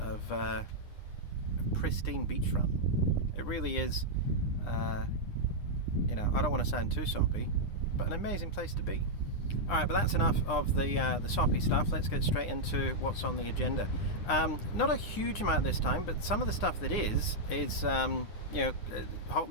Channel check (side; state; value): right; late; 9.8 ms